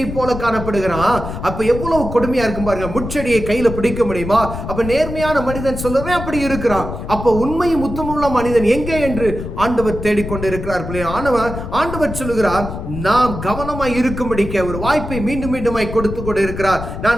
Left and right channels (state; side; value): noise; left; rumble, 7 dB below the sound